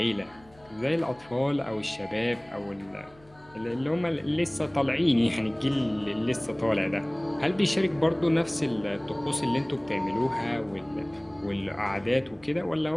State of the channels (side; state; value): left; noise; hum, 27 dB below the sound